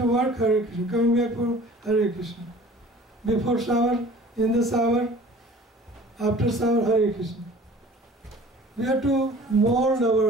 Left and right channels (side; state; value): both; normal; correlation 0.47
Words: work, Hare Krishna. Coming back for Hare Krishna. Before shower, in the shower, after shower, Hare Krishna. We have to mold